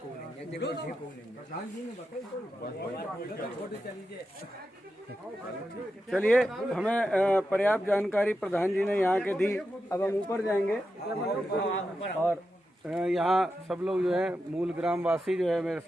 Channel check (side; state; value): both; normal; correlation 0.89